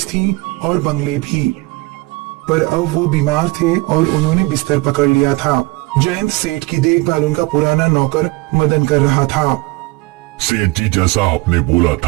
थी और बंगले भी। पर अब वो बीमार थे और उन्होंने बिस्तर पकड़ लिया था। जयंत सेठ की देखभाल उनका पुराना नौकर मदन कर रहा था। सेठ जी, जैसा आपने बोला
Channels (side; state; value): left; quieter; 23.4 dB